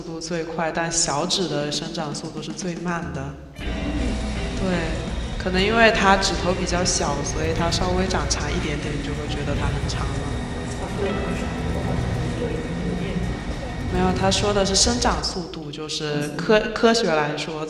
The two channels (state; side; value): identical; both; correlation 1.00